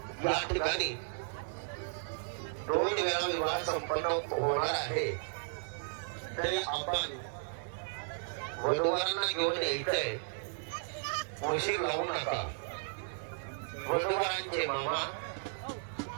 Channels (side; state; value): left; silent; 55 dB below the other